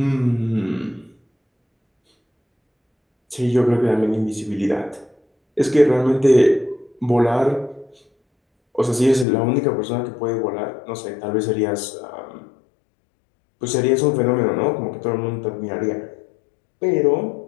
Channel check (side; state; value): right; drops out; at 9.2 s